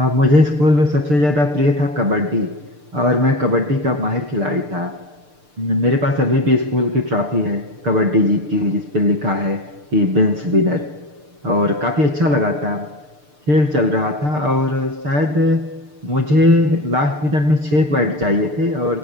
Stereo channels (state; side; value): late; left; 6.7 ms